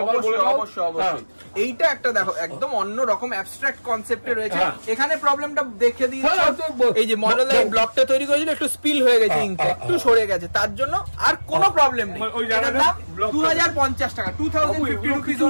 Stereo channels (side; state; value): both; inverted; correlation -1.00